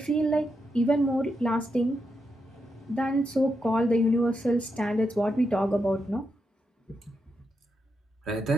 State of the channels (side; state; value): both; normal; correlation 0.84